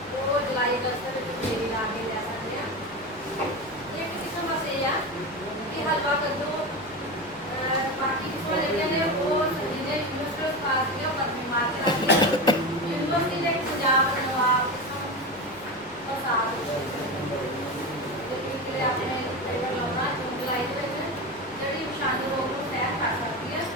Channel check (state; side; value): noise; left; rumble, 26 dB below the sound